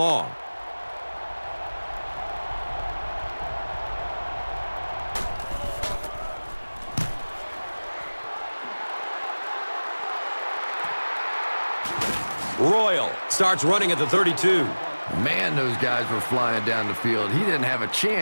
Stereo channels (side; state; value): both; inverted; correlation -1.00